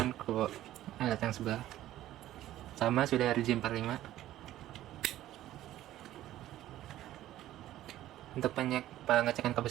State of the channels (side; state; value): left; quieter; 13.8 dB